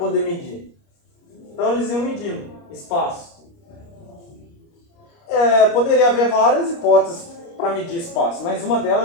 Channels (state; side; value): late; right; 29 ms